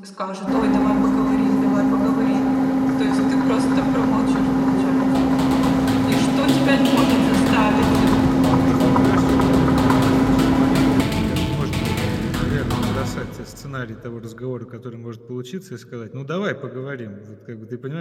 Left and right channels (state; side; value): identical; both; correlation 1.00